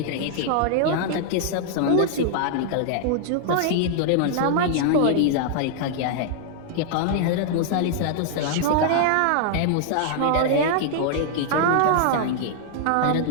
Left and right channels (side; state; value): both; different; correlation 0.00